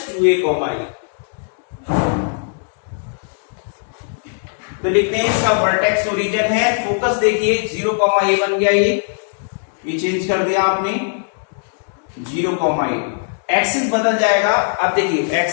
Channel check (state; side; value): silent; right; digital silence